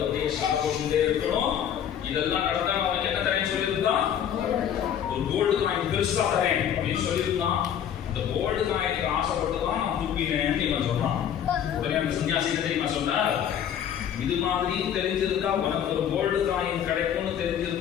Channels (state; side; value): quieter; right; 9.3 dB